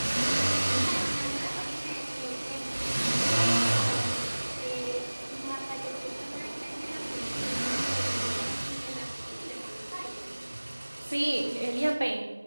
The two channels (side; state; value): both; inverted; correlation -1.00